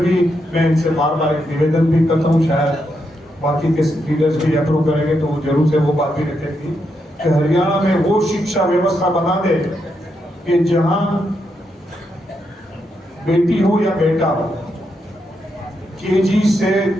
मैं इनसे बार बार एक निवेदन भी करता हूँ, शायद बाकी के लीडर्स भी अप्रूव करेंगे तो जरूर से वो बात भी रखेगी कि हरियाणा में वो शिक्षा व्यवस्था बना दे कि जहाँ बेटी हो या बेटा हो, केजी से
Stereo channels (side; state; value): both; normal; correlation 0.81